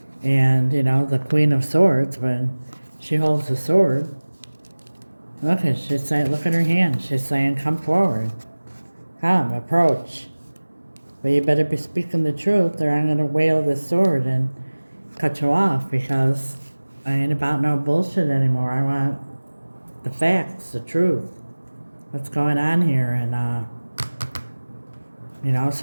And, the Queen of Swords, when she holds the sword, look at her hand. She's saying, come forward. Come, approach. But you better be speaking the truth, or I'm going to wield the sword and cut you off, because I ain't about no bullshit anymore. I want the facts, the truth. What's going on here? And,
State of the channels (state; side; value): inverted; both; correlation -1.00